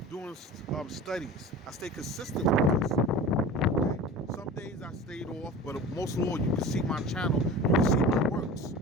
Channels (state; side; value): normal; both; correlation 0.35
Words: Doing studies. I stay consistent with this. Some days I stayed off, but most of all, you can see my channel, you can see my works,